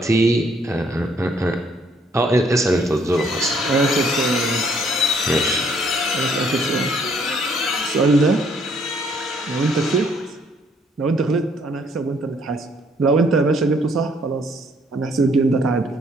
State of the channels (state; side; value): normal; both; correlation 0.65